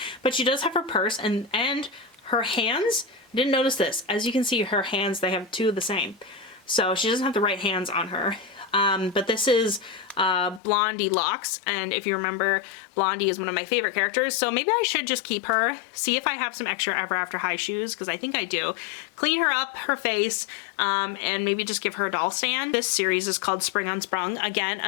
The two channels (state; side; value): drops out; right; at 10.6 s